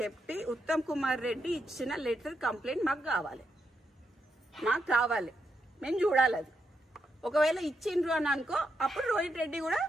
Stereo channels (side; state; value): both; normal; correlation 0.82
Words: చెప్పి ఉత్తమ్ కుమార్ రెడ్డి ఇచ్చిన లెటర్ కంప్లైంట్ మాకు కావాలి, మేము చూడాలి. అది ఒకవేళ ఇచ్చిండ్రు అని అనుకో, అప్పుడు రోహిన్ రెడ్డి కూడా